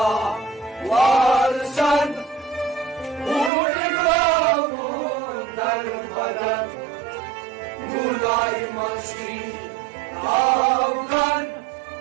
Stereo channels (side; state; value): left; drops out; at 3.5 s